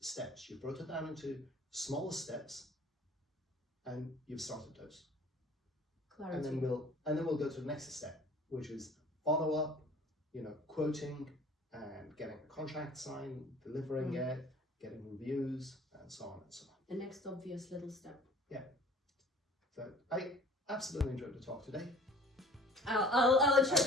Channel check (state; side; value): normal; both; correlation 0.49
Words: steps. You brought it down into smaller steps, and you've started those. Clarity. And then we'll go to the next step, which is follow up, quoting, and getting a contract signed, delivering it, getting reviews, and so on and so on. The next obvious little step. Yeah. So I absolutely enjoyed the talk today. I'll try